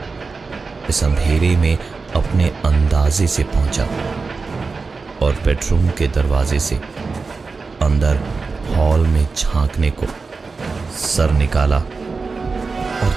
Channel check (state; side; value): quieter; left; 4.3 dB